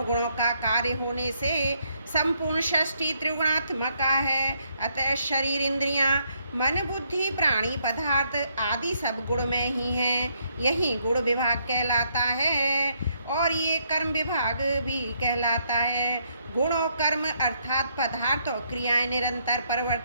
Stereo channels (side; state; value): both; inverted; correlation -0.73